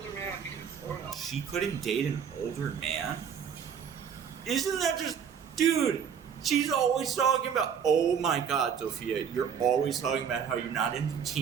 man because... She couldn't date an older man? Isn't that just... Dude... She's always talking about, oh my God, Tophia, you're always talking about how you're not into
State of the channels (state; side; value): quieter; left; 7.5 dB